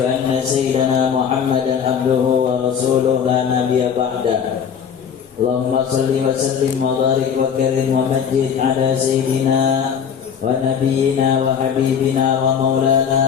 أن سيدنا محمدا عبده ورسوله لا نبي بعده اللهم صل وسلم وبارك وكرم ومجد على سيدنا ونبينا وحبيبنا ومولانا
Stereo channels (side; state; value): right; quieter; 7.6 dB